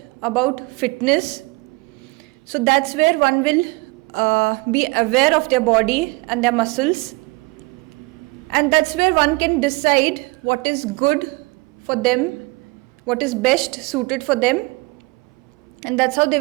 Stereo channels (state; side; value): quieter; left; 25.9 dB